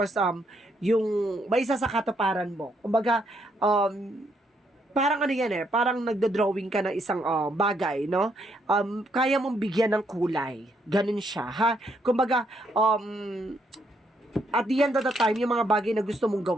yung may isa sa katuparan mo. Kumbaga, parang ano yan parang nagdo-drawing ka ng isang bagay, no? Kaya mong bigyan ng kulay. Ganun siya, ha? Kumbaga, at the end of the time, yung mga bagay na gusto mong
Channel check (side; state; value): both; normal; correlation 0.74